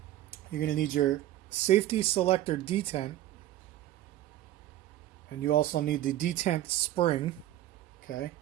You're going to need your safety selector detent, and you also need the detent spring. Okay,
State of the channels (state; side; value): quieter; left; 13.7 dB